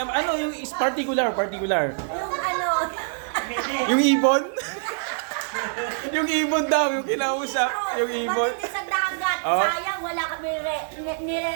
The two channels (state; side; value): silent; left; digital silence